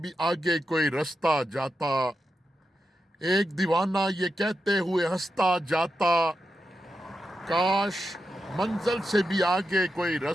بھی آگے کوئی رستہ جاتا۔ ایک دیوانہ یہ کہتے ہوئے ہنستا جاتا، کاش منزل سے بھی آگے کوئی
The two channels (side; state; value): both; normal; correlation 0.88